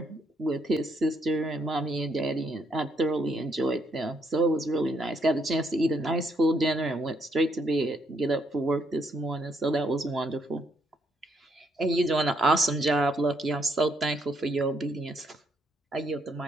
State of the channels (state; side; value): normal; both; correlation 0.74